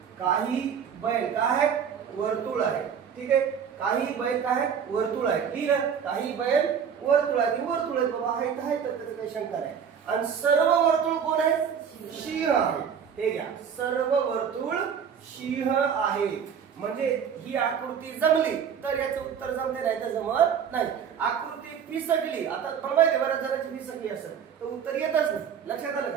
बैल काय आहे, वर्तुळ आहे. ठीक आहे. काही बैल काय आहे, वर्तुळ आहे. ठीक आहे. काही बैल वर्तुळ आहे, वर्तुळ आहे बाबा, आहे तर त्याचं काही शंका नाही. आणि सर्व वर्तुळ कोण आहे? सिंह आहे. हे घ्या, सर्व वर्तुळ सिंह आहे. म्हणजे ही आकृती जमली तर याचं उत्तर जमते, नाही तर जमत नाही. आकृती फिसकली, आता पण माहिती बऱ्याच जणांची फिसकली असेल तर उत्तर येतच नाही. लक्षात आलं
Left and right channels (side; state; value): left; quieter; 7.5 dB